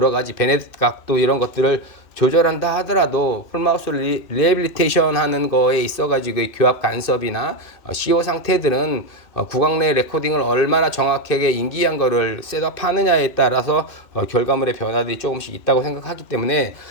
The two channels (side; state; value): right; late; 2.5 ms